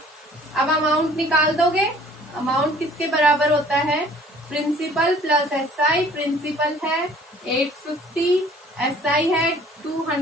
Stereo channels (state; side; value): normal; both; correlation 0.54